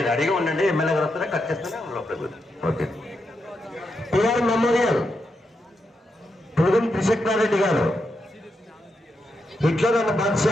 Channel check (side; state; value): both; normal; correlation 0.84